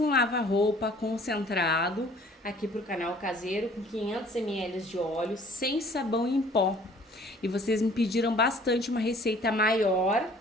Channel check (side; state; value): both; normal; correlation 0.53